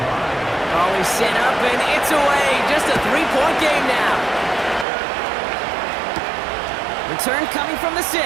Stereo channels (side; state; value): left; drops out; at 4.9 s